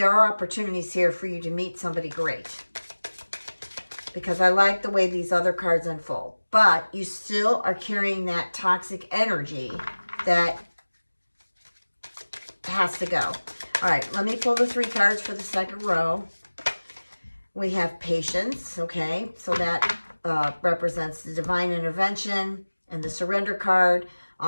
are opportunities here for you to meet somebody great, because I like the way these other cards unfold. But you still are carrying that toxic energy that has to go. All right, let me pull the 3 cards for the second row. We have patience, okay? So that represents the divine intervention and the surrender card,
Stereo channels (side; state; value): both; inverted; correlation -1.00